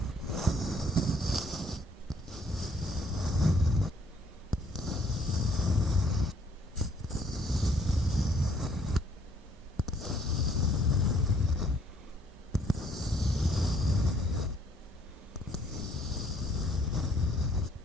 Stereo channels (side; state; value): both; normal; correlation 0.64